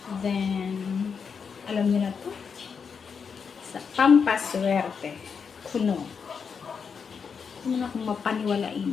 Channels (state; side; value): quieter; right; 6.1 dB